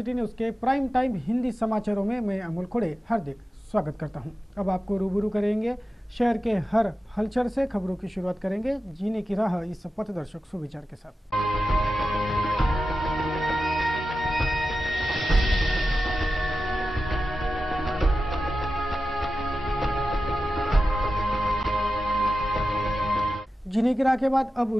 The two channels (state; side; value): normal; both; correlation 0.93